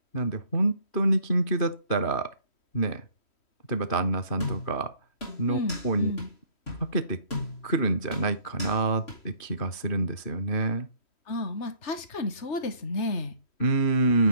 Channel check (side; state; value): right; late; 3.1 ms